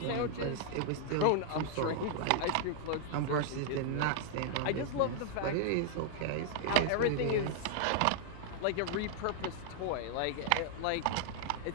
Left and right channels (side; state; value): both; different; correlation 0.00